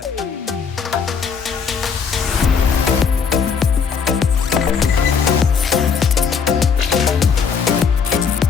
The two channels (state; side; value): quieter; right; 6.1 dB